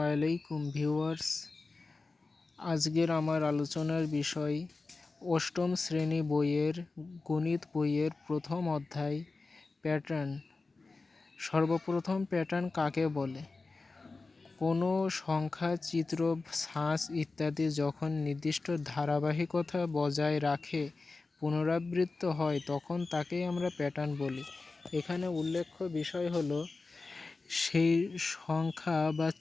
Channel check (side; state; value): right; quieter; 3.7 dB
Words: ভিউয়ার্স। আজকের আমার আলোচনার বিষয় অষ্টম শ্রেণী বইয়ের গণিত বইয়ের প্রথম অধ্যায় প্যাটার্ন। সর্বপ্রথম প্যাটার্ন কাকে বলে? কোনো সংখ্যা, চিত্র, ছাঁচ ইত্যাদি যখন নির্দিষ্ট ধারাবাহিকতা বজায় রাখে পুনরাবৃত্ত হয় তখন তাকেই আমরা প্যাটার্ন বলি। এখানে উল্লেখ্য বিষয় হলো সেই সংখ্যা বা